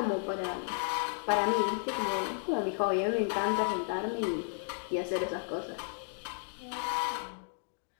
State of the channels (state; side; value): silent; right; 56 dB below the other